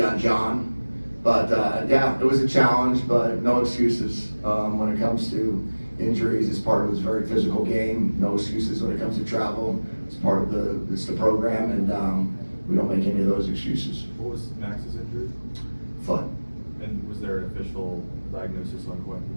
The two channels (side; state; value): both; inverted; correlation -1.00